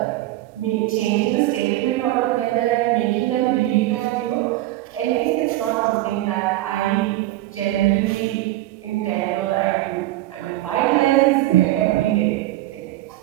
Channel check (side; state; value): left; quieter; 16.3 dB